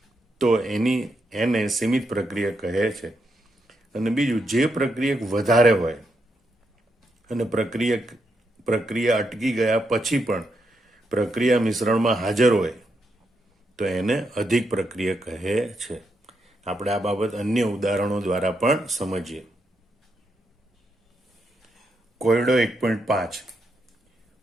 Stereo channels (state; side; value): normal; both; correlation 0.81